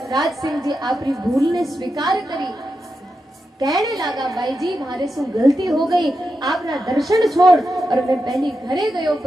राज सिंह जी आपरी भूल ने स्वीकार करी। कहने लगा भाई जी मारे सु गलती हो गई, आपना दर्शन छोड़ और मैं पहली घरे गयो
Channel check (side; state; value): both; normal; correlation 0.88